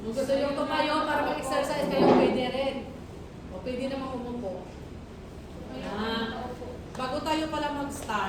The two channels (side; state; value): both; identical; correlation 1.00